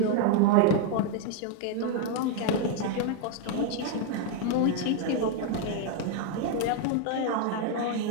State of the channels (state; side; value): different; both; correlation 0.01